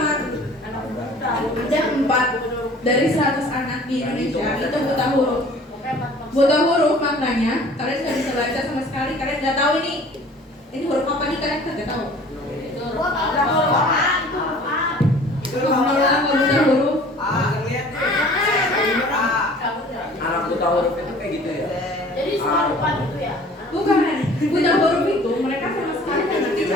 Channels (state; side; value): normal; both; correlation 0.49